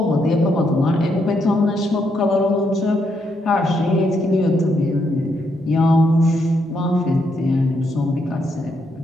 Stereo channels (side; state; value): both; normal; correlation 0.77